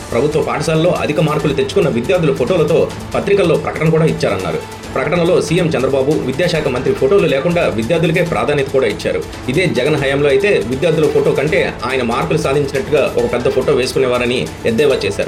ప్రభుత్వ పాఠశాలలో అధిక మార్కులు తెచ్చుకున్న విద్యార్థుల ఫోటోలతో పత్రికల్లో ప్రకటన కూడా ఇచ్చారన్నారు. ప్రకటనలో సీఎం చంద్రబాబు విద్యాశాఖ మంత్రి ఫోటోలు లేకుండా విద్యార్థులకే ప్రాధాన్యత కూడా ఇచ్చారు. ఇదే జగన్ హయాంలో అయితే విద్యార్థుల ఫోటో కంటే ఆయన మార్కులు సాధించినట్టుగా ఒక పెద్ద ఫోటో వేసుకునేవారని ఎద్దేవా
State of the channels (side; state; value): both; identical; correlation 1.00